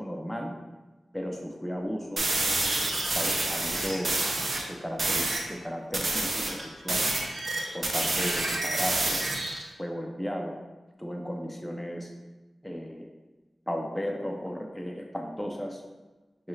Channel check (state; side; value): normal; both; correlation 0.93